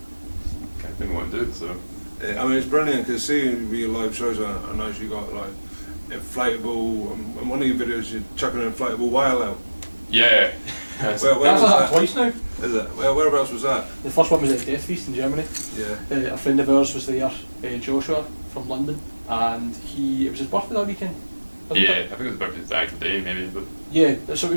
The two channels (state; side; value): inverted; both; correlation -1.00